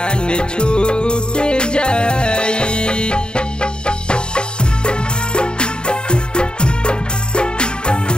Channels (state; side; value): late; right; 0.049 ms